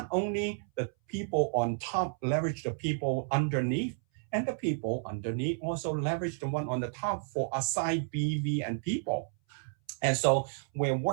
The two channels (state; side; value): silent; left; 57 dB below the other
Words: only the people on top leverage the people underneath, and the people underneath also leverage the one on the top for aside BV and people. And so we're